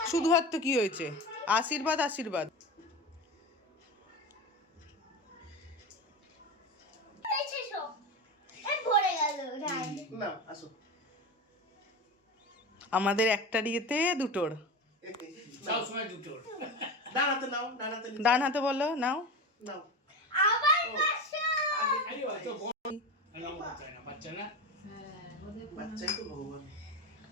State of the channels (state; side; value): normal; both; correlation 0.25